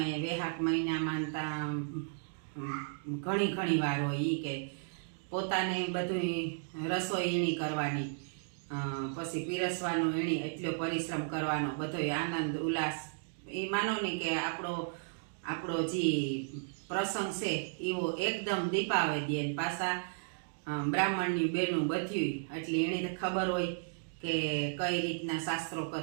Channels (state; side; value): silent; left; digital silence